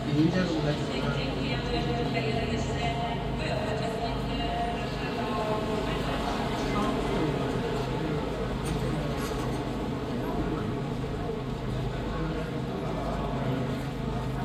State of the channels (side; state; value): both; identical; correlation 1.00